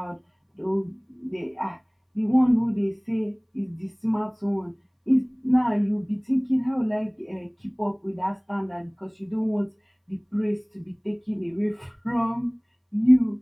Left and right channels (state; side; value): identical; both; correlation 1.00